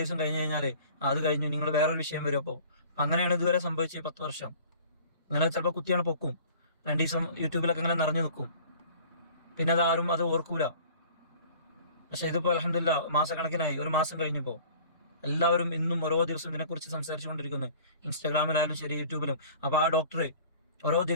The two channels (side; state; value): both; inverted; correlation -0.47